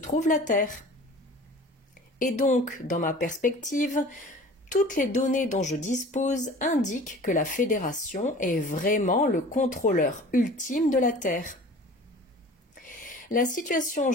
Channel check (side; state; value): both; normal; correlation 0.43